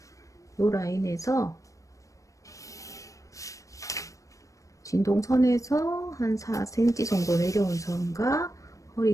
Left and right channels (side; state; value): right; late; 0.16 ms